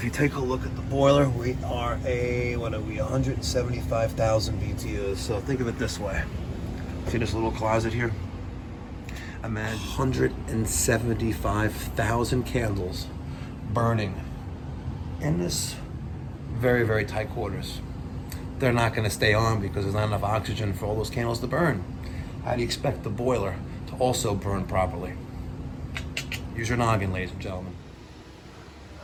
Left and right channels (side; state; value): both; identical; correlation 1.00